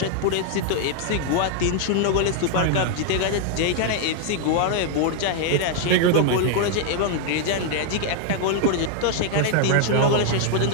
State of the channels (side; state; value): both; different; correlation 0.00